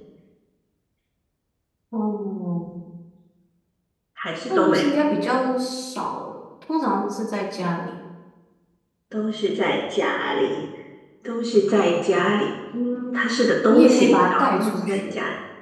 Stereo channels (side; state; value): both; identical; correlation 1.00